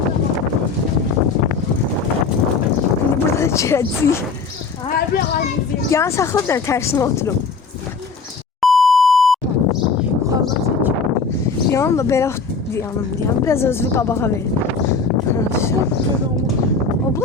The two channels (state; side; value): quieter; right; 4.6 dB